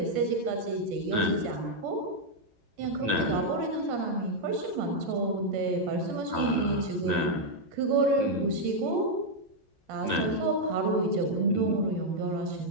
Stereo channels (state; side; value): late; left; 9.0 ms